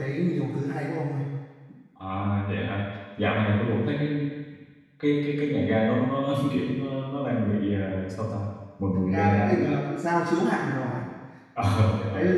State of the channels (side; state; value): both; identical; correlation 1.00